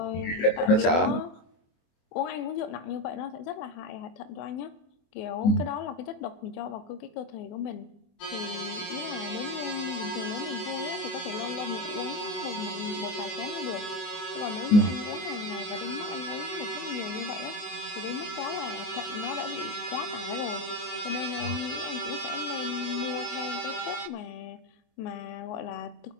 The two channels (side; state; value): right; late; 24 ms